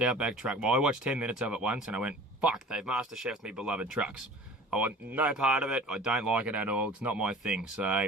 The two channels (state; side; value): normal; both; correlation 0.43